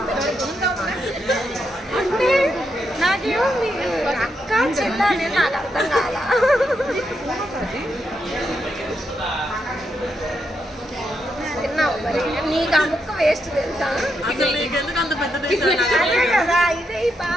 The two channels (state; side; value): normal; both; correlation 0.82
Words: అంటే నాకేమో మీరు అక్క చెల్ల అనేది నాకు అర్థం కాదా తిన్నావు మరి నీకు ఆ ముక్క వేస్ట్ తెలుసా అసలు నీకెందుకు అంత పెద్ద దేశం? అదే కదా ఇదే ఈ